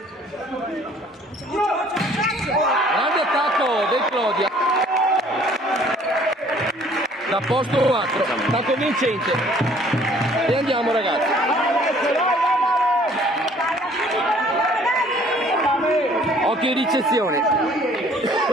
Grande attacco del Clodia. Da posto 4, attacco vincente. E andiamo ragazzi. Occhio in ricezione.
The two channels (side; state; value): both; normal; correlation 0.57